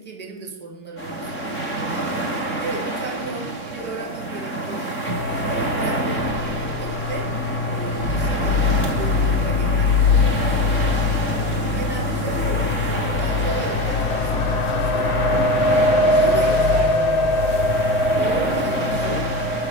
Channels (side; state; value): right; late; 3.6 ms